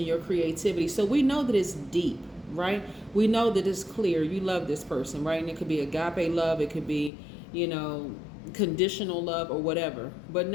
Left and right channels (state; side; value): drops out; right; at 7.1 s